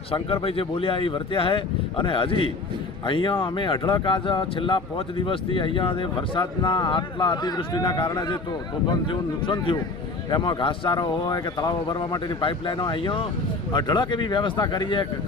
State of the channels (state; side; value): quieter; right; 3.6 dB